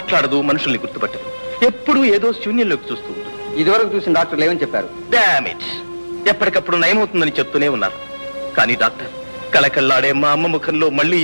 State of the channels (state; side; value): inverted; both; correlation -1.00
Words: మనుషుల్ని గుర్తుపట్టదు, ఎప్పుడూ ఏదో శూన్యంలోకి చూస్తూ ఉంటుంది. ఇదివరకు చూసిన డాక్టర్లు ఏమని చెప్పారు? డామేజ్. ఎప్పటికప్పుడు నయమవుతుందని చెప్తూనే ఉన్నారు. కానీ డాక్టర్, కళకళ్ళాడే మా అమ్మ ముఖంలో మళ్ళీ